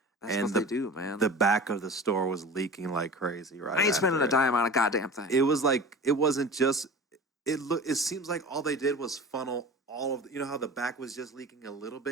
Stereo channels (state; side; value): normal; both; correlation 0.36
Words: That's what they do, man. The back of the store was leaking like crazy, right? I ain't spending a dime on a goddamn thing. It was like, it wasn't just, it seems like all they did was funnel all of you know how the back was just leaking a little